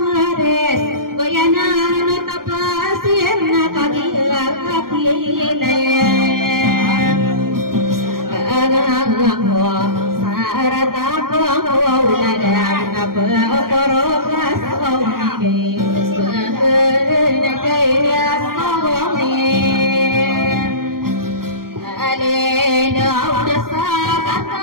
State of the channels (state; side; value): late; left; 0.92 ms